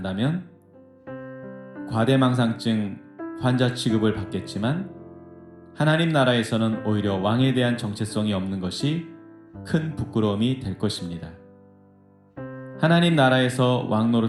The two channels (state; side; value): identical; both; correlation 1.00